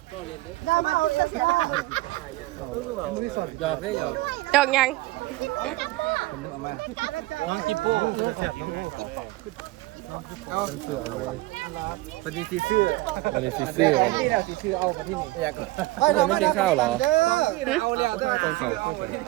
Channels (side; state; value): left; quieter; 19.4 dB